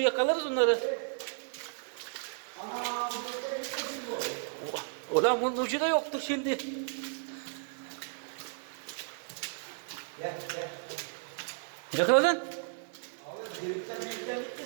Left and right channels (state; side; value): silent; left; digital silence